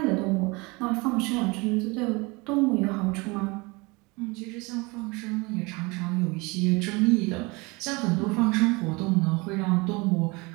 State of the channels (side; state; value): left; quieter; 26.0 dB